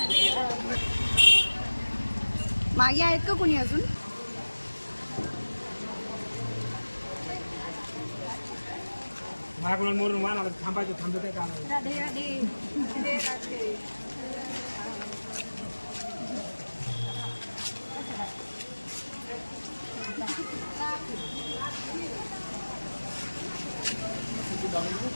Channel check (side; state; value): both; inverted; correlation -1.00